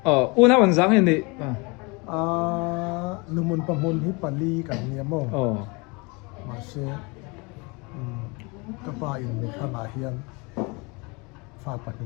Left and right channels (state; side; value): quieter; right; 28.5 dB